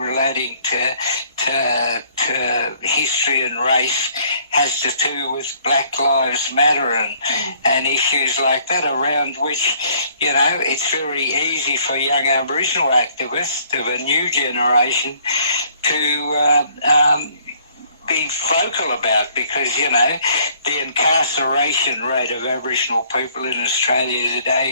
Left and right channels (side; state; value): both; inverted; correlation -0.61